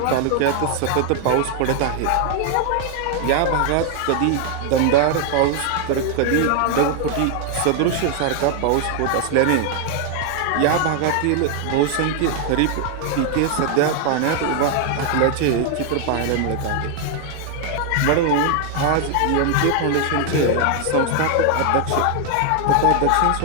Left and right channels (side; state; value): both; different; correlation 0.00